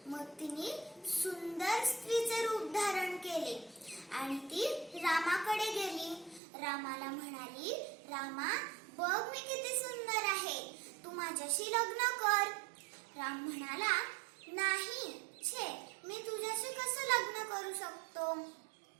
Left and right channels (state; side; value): drops out; left; at 6.4 s